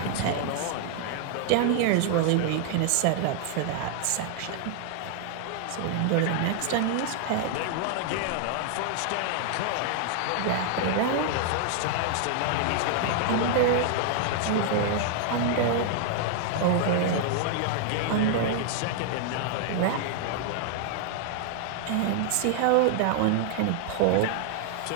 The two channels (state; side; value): different; both; correlation 0.00